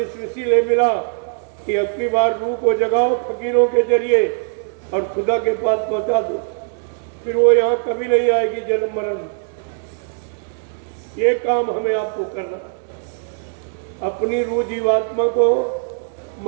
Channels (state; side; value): silent; left; 66 dB below the other